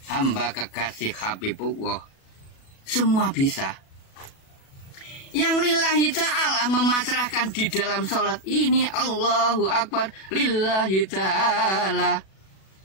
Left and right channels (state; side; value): late; right; 37 ms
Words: hamba kekasih Habibullah. Semua bisa. Yang lillahi ta'ala memasrahkan di dalam sholat ini, Allahu Akbar lillahi ta'ala.